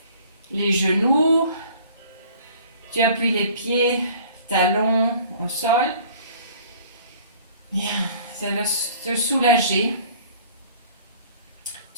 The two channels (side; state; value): both; inverted; correlation -0.51